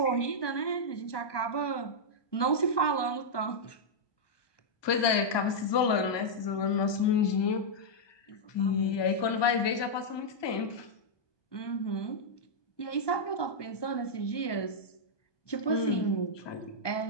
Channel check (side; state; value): right; late; 1.2 ms